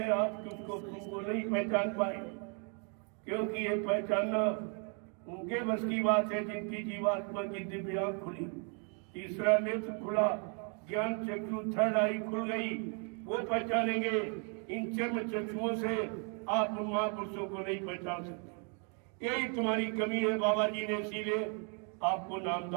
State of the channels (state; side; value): quieter; left; 39.2 dB